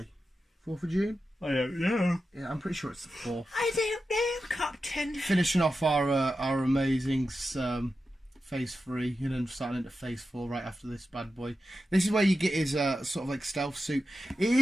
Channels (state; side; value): normal; both; correlation 0.91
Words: 4th of June? I don't know. Yeah, I'm pretty sure it's the 4th. I don't know, Captain. Finishing off our amazing phase 3 and then starting into phase 4 right after this bad boy. This is where you get his sort of like stealth suit. It